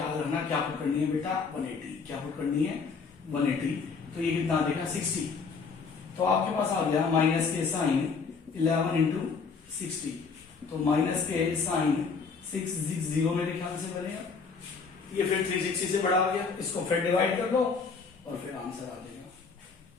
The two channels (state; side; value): quieter; right; 5.1 dB